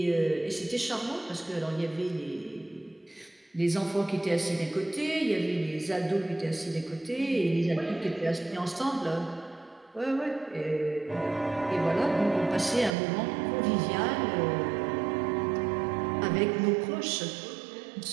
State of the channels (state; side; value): drops out; left; at 12.9 s